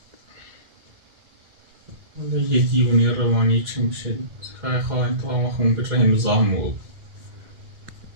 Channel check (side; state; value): left; late; 2.1 ms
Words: یه دیوونی روانی چی میشه خواهی خواهی تا همه خون به رحم زامو